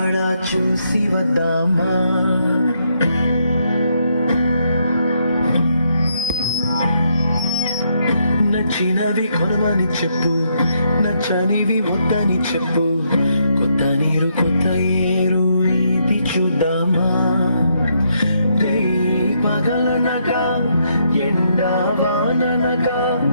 చూసి వద్దామా. నచ్చినవి కొనమని చెప్పు, నచ్చనివి వద్దని చెప్పు, కొత్త నీరు కొత్త ఏరు ఇది చూద్దామా. రే పగలనగా ఎండా వాననగా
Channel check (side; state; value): both; inverted; correlation -0.75